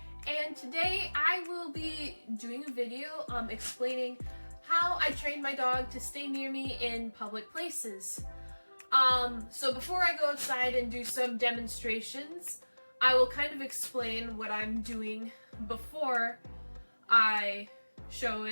and today I will be doing a video explaining how I train my dog to stay near me in public places. So before I go outside and do some demonstrations, I will kind of explain what I'm doing before I show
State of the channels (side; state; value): both; inverted; correlation -1.00